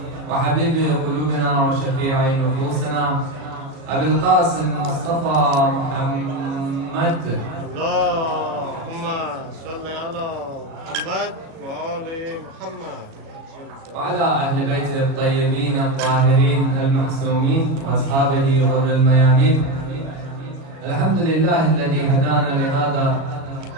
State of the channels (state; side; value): late; left; 36 ms